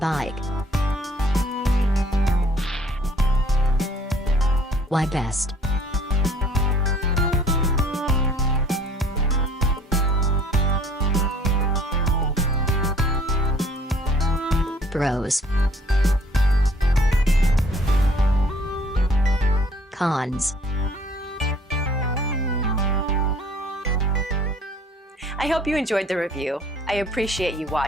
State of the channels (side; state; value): both; normal; correlation 0.57